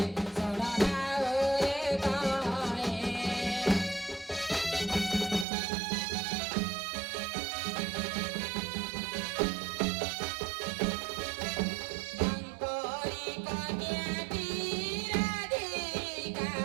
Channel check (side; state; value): left; drops out; at 5.5 s